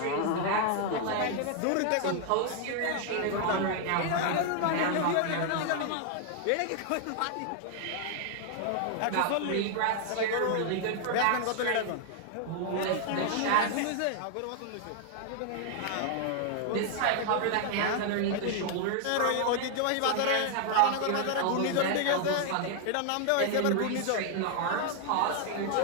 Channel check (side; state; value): both; different; correlation 0.00